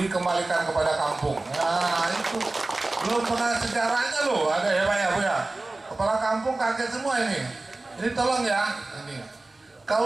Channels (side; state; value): left; quieter; 3.0 dB